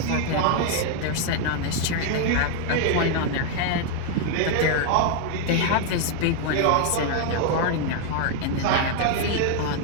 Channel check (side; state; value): both; different; correlation 0.00